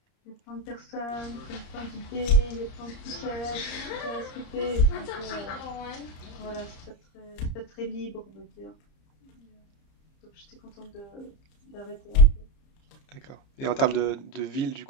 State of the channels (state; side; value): late; right; 30 ms